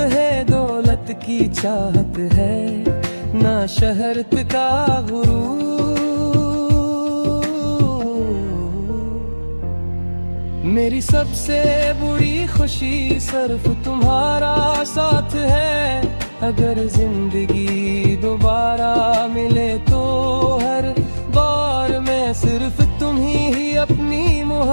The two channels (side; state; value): both; inverted; correlation -1.00